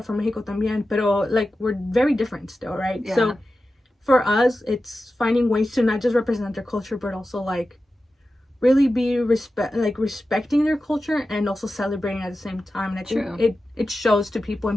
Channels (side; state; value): both; normal; correlation 0.93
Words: from Mexico también, pero, like, we're very different still, right? So for us, it's finding ways to not just represent their culture, but also, like, really be respecting their culture and also celebrating at the same time. And I think it shows to people,